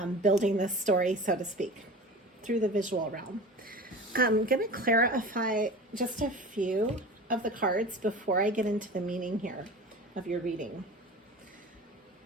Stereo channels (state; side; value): normal; both; correlation 0.36